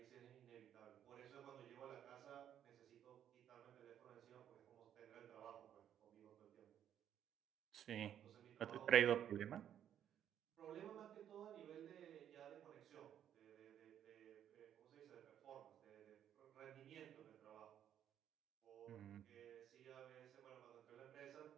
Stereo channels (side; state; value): left; quieter; 10.0 dB